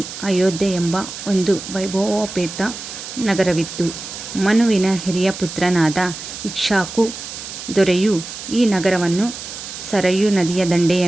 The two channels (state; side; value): noise; right; hiss, 10 dB below the sound